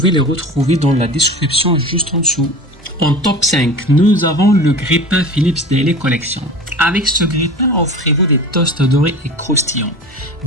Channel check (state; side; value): normal; both; correlation 0.35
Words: les retrouver dans la description juste en dessous. En top 5, nous avons le grille-pain Philips Daily Collection. Avec ce grille-pain, offrez-vous des toasts dorés et croustillants,